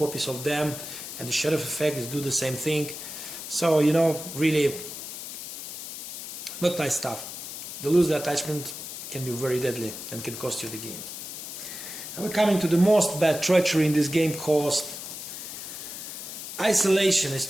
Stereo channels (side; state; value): left; noise; hiss, 9 dB below the sound